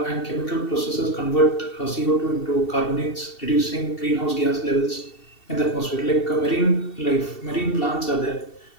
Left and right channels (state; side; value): late; right; 2.7 ms